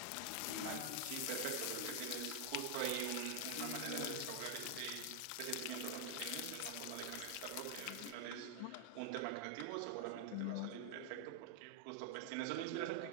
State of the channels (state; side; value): different; both; correlation 0.00